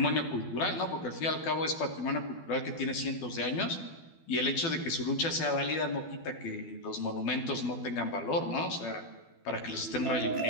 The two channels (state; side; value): late; right; 12 ms